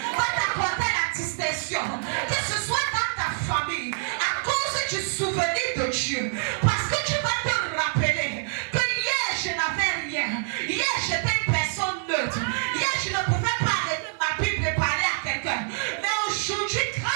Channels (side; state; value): left; silent; digital silence